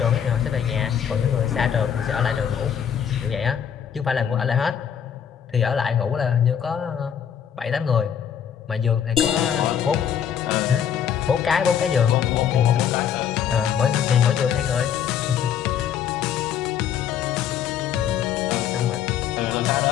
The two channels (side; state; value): right; quieter; 8.6 dB